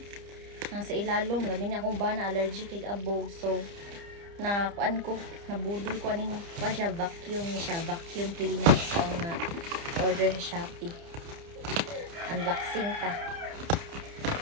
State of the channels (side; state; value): left; late; 30 ms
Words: Nang sa ilalom, labi na akong bana allergic kay abog. So na kuan ko, nabudol ko aning pa siya vacuum ni siya, vacuum cleaner ko na order sa Shopee. Unboxing ta.